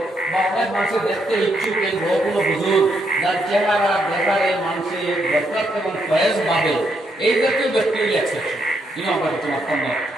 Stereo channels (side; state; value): both; normal; correlation 0.77